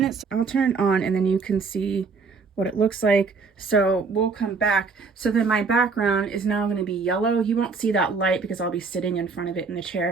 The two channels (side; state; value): left; quieter; 4.7 dB